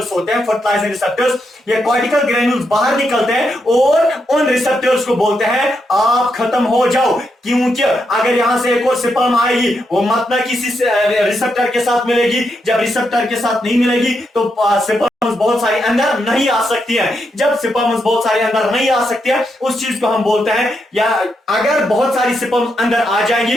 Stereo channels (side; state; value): both; normal; correlation 0.82